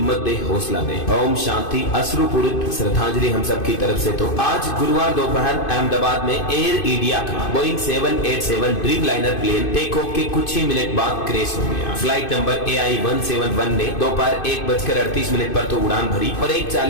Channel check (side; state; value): right; late; 2.5 ms